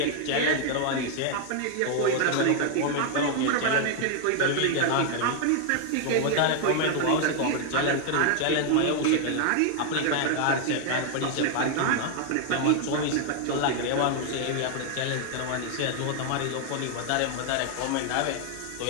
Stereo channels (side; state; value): both; different; correlation 0.00